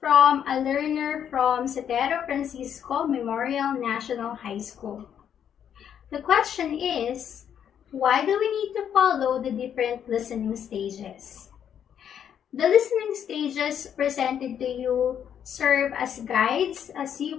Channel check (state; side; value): quieter; right; 8.9 dB